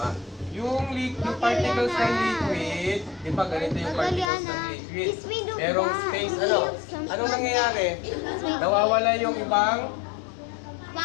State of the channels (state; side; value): drops out; right; at 4.3 s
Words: Yung particles ng liquid, di ba ganito yung particles ng liquid? Merong space, anong nangyayari? Nawawala yung ibang